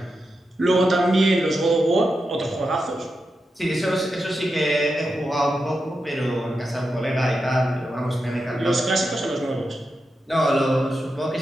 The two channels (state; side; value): normal; both; correlation 0.88